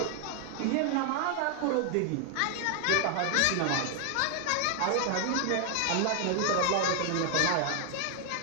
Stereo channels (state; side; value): different; both; correlation 0.00